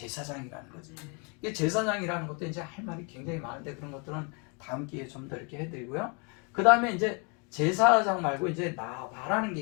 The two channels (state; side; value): quieter; right; 33.9 dB